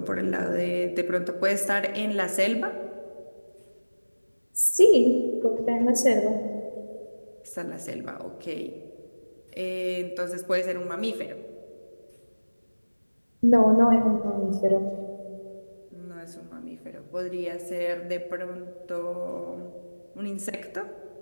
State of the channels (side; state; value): both; inverted; correlation -1.00